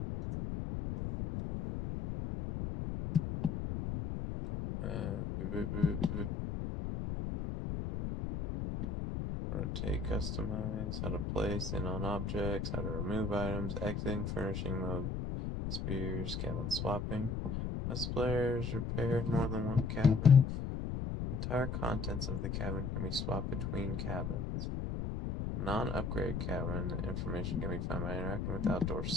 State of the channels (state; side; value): noise; left; rumble, 3 dB below the sound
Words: Rotate, customize, how to place in on objects, how to remove items, exiting, furnishing mode, spears, cabin swapping. As players repaired more than one cabin, entire contents of the cabin can be swapped between cabins. Non-upgrade cabin information can be found by interacting with the outdoor